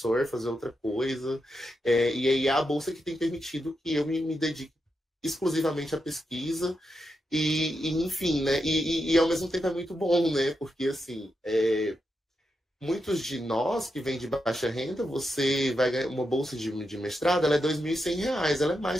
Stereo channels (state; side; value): normal; both; correlation 0.86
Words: fazer outra coisa. E aí, é a bolsa que tem permitido que eu me dedique exclusivamente à pesquisa. Enfim, né? E ao mesmo tempo é muito bom, né? Porque, assim, muitos de nós que vêm de baixa renda, você vai ganhar uma bolsa de mestrado, ela é R$ 2.100, ela é